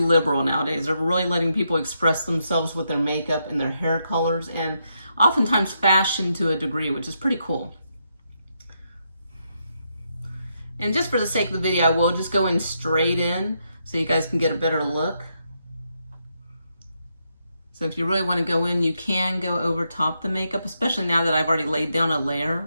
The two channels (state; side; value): inverted; both; correlation -0.80